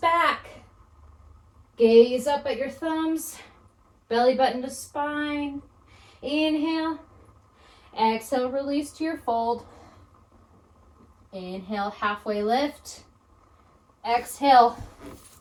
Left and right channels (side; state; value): both; identical; correlation 1.00